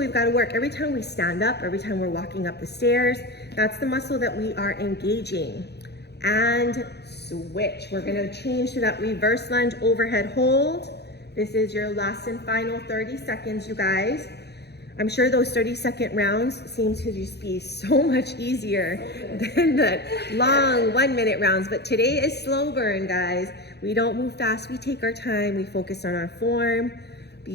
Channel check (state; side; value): late; right; 0.48 ms